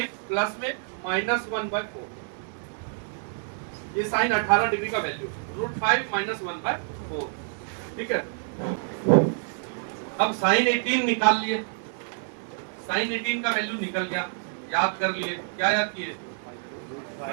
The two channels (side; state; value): left; silent; 60 dB below the other